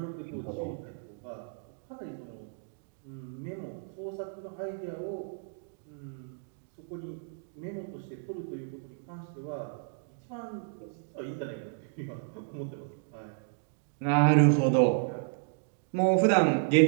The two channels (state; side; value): silent; left; digital silence